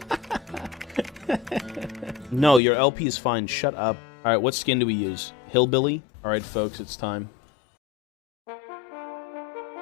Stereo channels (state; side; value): drops out; right; at 2.6 s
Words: No, your LP is fine. Shut up. All right, what skin do we use? Hillbilly? All right, folks, it's time.